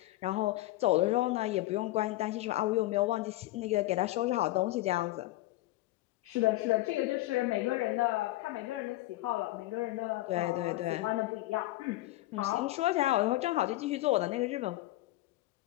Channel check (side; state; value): right; quieter; 17.6 dB